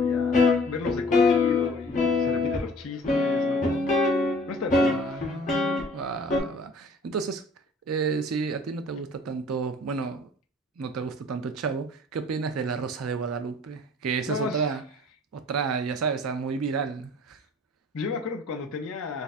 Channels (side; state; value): both; normal; correlation 0.50